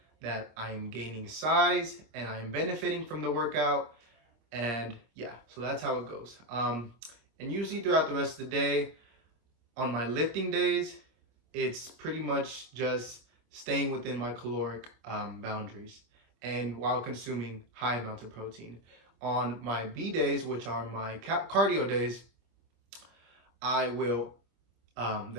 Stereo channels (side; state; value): left; late; 26 ms